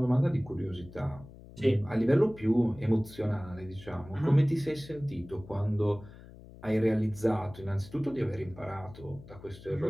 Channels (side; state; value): left; noise; hum, 18 dB below the sound